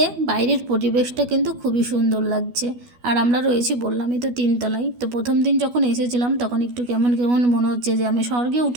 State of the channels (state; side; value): late; left; 12 ms